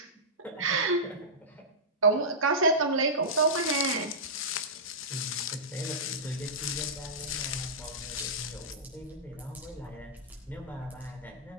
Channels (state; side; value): normal; both; correlation -0.14